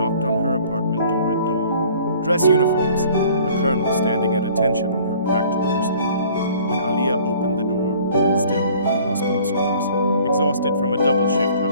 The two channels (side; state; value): both; inverted; correlation -0.53